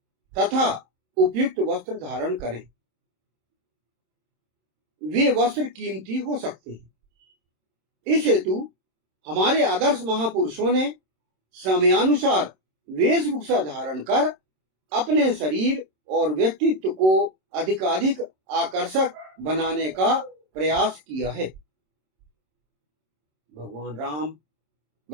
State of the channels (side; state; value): left; late; 27 ms